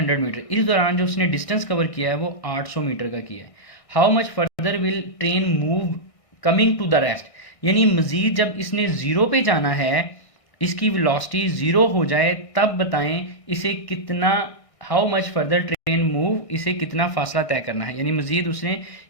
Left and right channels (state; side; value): late; right; 1.6 ms